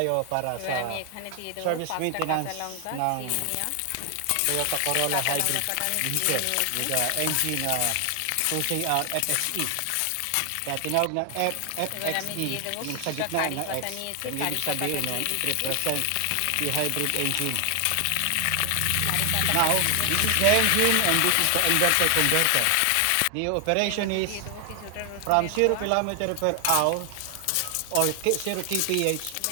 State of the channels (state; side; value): different; both; correlation 0.00